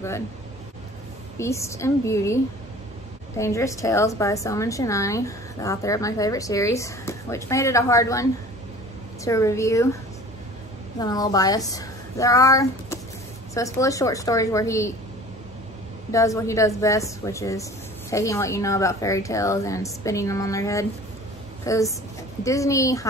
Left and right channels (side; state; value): both; normal; correlation 0.45